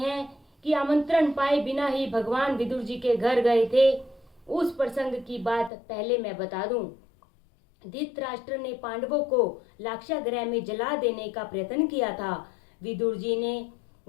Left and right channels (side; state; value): right; drops out; at 5.7 s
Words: कि आमंत्रण पाए बिना ही भगवान विदुर जी के घर गए थे। उस प्रसंग की बात पहले मैं बता दूं। धृतराष्ट्र ने पांडवों को लाक्षागृह में जला देने का प्रयत्न किया था। विदुर जी ने